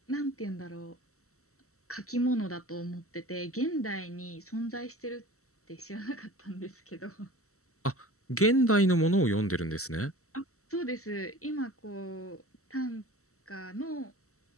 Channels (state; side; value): late; right; 0.64 ms